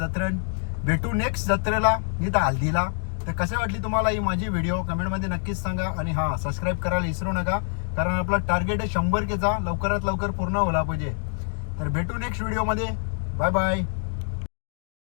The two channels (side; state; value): right; silent; 56 dB below the other